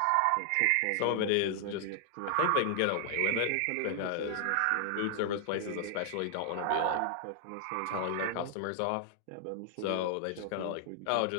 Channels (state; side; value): different; both; correlation 0.00